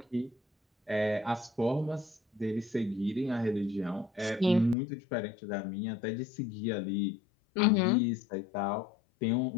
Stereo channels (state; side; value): drops out; right; at 4.8 s